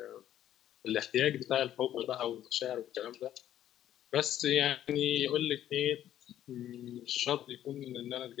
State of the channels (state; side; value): quieter; right; 11.7 dB